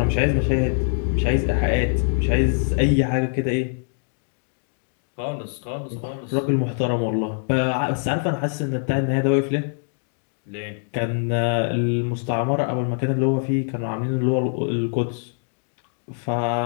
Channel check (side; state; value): right; silent; digital silence